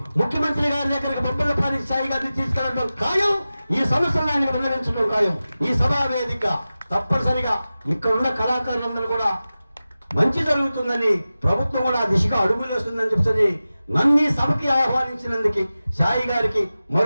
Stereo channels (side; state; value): both; inverted; correlation -0.95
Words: ముఖ్యమంత్రి గారి దగ్గరికి బొబ్బిలపాటి సాయి గారిని తీసుకెళ్ళడం ఖాయం. ఈ సమస్యలను ఆయన విన్నవించడం ఖాయం. ఈ సభా వేదిక తప్పనిసరిగా ఇక్కడ ఉన్న కళాకారులందరూ కూడా మంచి జరుగుతుందని, ప్రభుత్వం కూడా ఆ దిశగా అడుగులు వేస్తుందని చెప్పని నన్ను ఈ సభకి ఆహ్వానించినందుకు సాయి గారికి